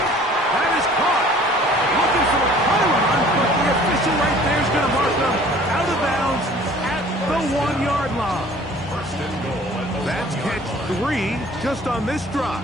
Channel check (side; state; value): both; normal; correlation 0.51